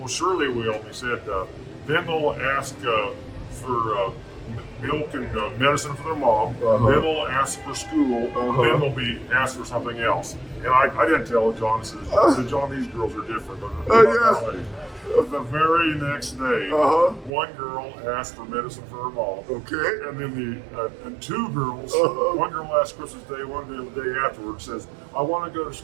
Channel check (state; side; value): drops out; left; at 17.3 s